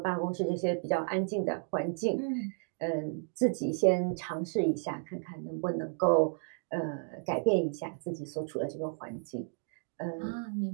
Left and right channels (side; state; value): left; silent; digital silence